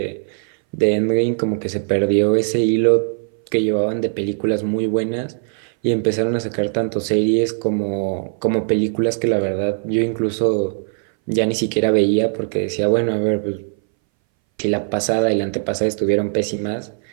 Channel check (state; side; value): silent; left; 62 dB below the other